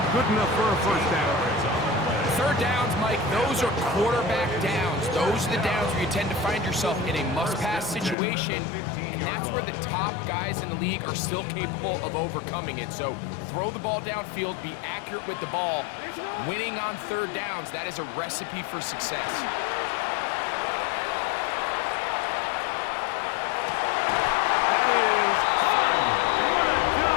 good enough for a first down. Third downs, Mike, those are quarterback downs. Those are the downs where you tend to find yourself in a must-pass situation, and that's where the top guys in the league are still capable of overcoming it. So throw the ball downfield, be accurate with the ball. Winning on third downs, that is a recipe for success.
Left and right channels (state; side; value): drops out; right; at 8.2 s